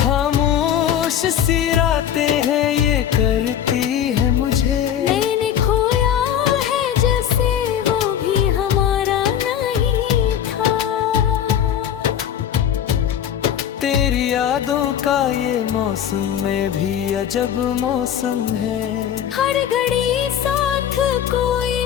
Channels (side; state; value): right; quieter; 9.7 dB